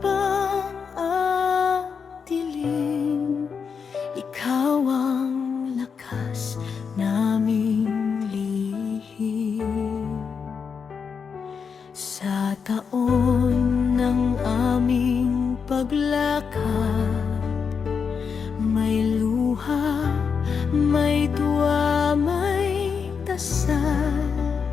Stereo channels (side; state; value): right; quieter; 6.1 dB